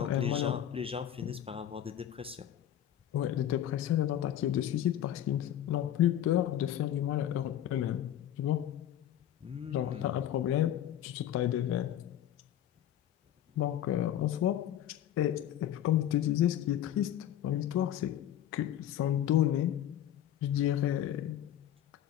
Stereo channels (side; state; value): right; quieter; 11.3 dB